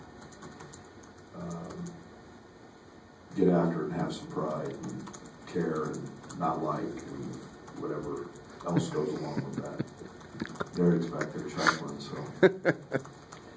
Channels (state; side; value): identical; both; correlation 1.00